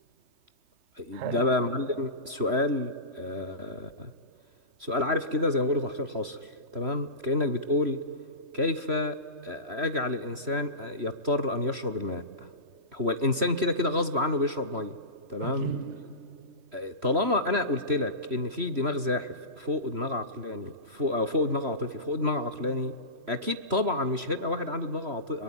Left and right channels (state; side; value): late; left; 3.0 ms